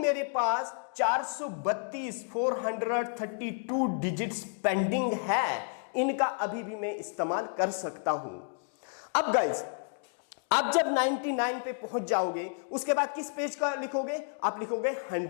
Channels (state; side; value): silent; right; 57 dB below the other